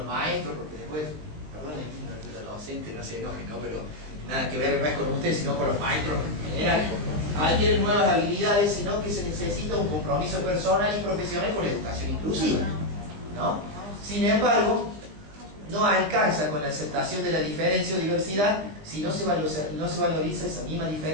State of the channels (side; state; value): left; late; 20 ms